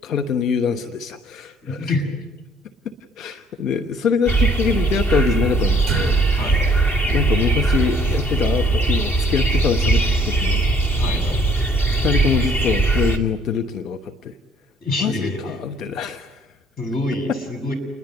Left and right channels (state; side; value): normal; both; correlation 0.60